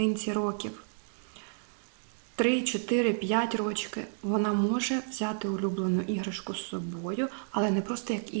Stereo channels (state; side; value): silent; left; digital silence